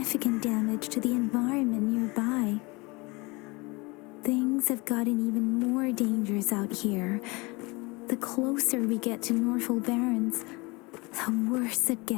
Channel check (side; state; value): right; quieter; 25.6 dB